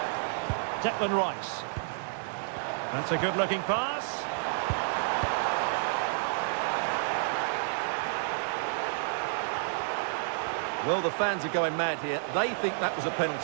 Declan Rice. That's a good-looking pass. Well, the fans are going mad here. They think that was a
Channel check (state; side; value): silent; left; digital silence